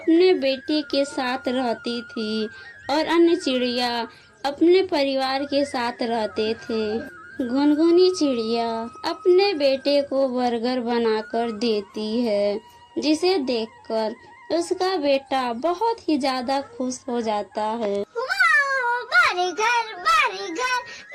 बेटे के साथ रहती थी और अन्य चिड़िया अपने परिवार के साथ रहते थे। गुनगुनी चिड़िया अपने बेटे को बर्गर बनाकर देती है, जिसे देखकर उसका बेटा बहुत ही ज्यादा खुश हो जाता है। वाह, बर्गर बर्गर,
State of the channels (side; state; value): both; identical; correlation 1.00